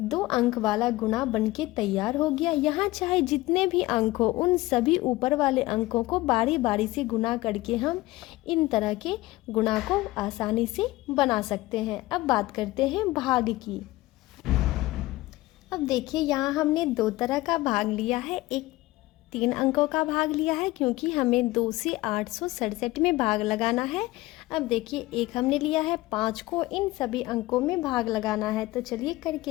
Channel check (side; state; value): right; quieter; 18.8 dB